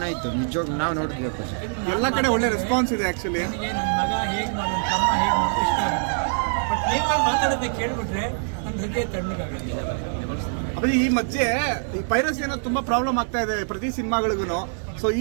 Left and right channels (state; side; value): silent; left; 62 dB below the other